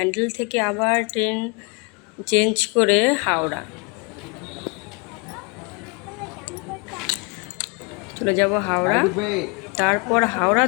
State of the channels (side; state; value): right; quieter; 30.8 dB